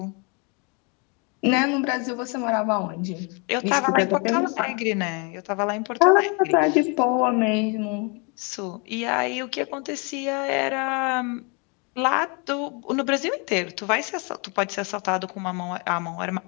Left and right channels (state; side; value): quieter; right; 33.0 dB